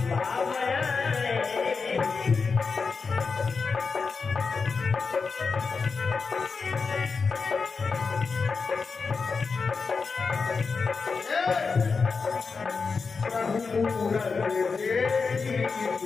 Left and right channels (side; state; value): right; quieter; 4.9 dB